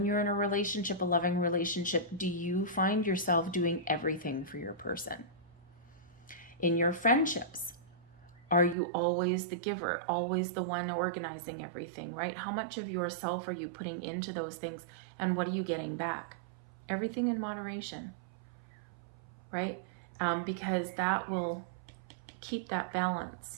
you're in a relationship, a loving relationship, do you find yourself doing everything for your person? In your friendships, are you always the giver, always the one organizing everything, right? How much of yourself are you putting into those things and what are you getting back? Everything in moderation, right? Because that will keep that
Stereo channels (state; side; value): drops out; left; at 8.8 s